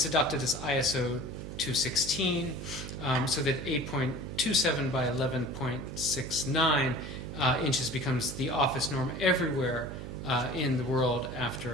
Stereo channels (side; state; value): right; noise; hum, 8 dB below the sound